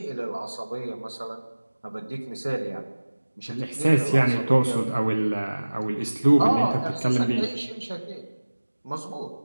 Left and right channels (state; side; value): inverted; both; correlation -1.00